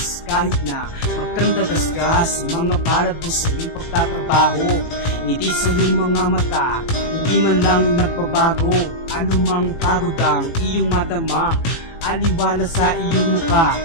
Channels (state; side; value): late; right; 18 ms